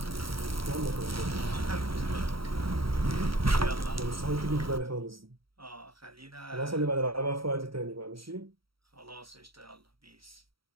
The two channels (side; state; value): left; late; 0.75 ms